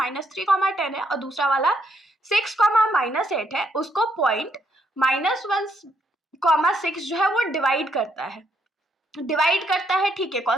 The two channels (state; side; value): normal; both; correlation 0.74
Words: 10 है और दूसरा वाला 6, -8 है, उसको पॉइंट -1, 6 जो है वो डिवाइड करता है। ठीक है,